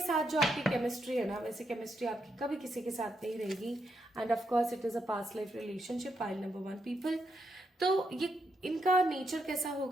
जो आपकी केमिस्ट्री है ना, वैसे केमिस्ट्री आपकी कभी किसी के साथ नहीं रहेगी। End of course it is a past life relationship, pile number 1 people. तो ये इनका नेचर कैसा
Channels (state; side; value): normal; both; correlation 0.81